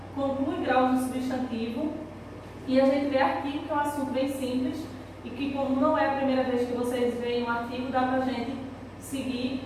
conclui graus do substantivo, e a gente vê artigo, que é um assunto bem simples, e que como não é a primeira vez que vocês veem um artigo, dá para a gente seguir,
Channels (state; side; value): identical; both; correlation 1.00